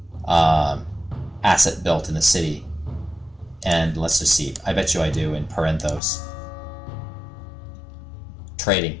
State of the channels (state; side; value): drops out; right; at 6.0 s